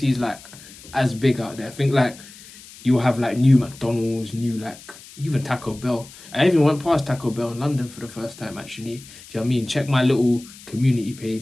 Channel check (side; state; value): left; noise; hiss, 19 dB below the sound